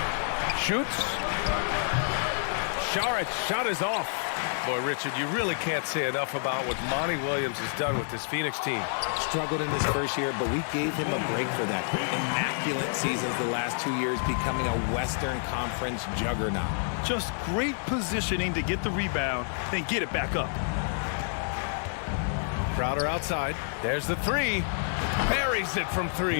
Shoots. Sharic's shot is off. Boy, Richard, you really can't say enough about what Monty Williams has done with this Phoenix team. Struggled in his first year, but we gave him a break for that. Immaculate seasons the last 2 years, becoming a Western Conference juggernaut. Just great positioning to get the rebound, then get it back up. Crowder outside. There's the three. Buries it from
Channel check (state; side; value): silent; right; digital silence